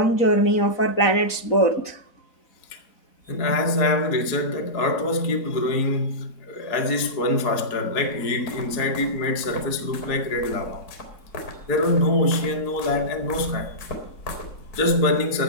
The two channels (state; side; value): late; right; 4.7 ms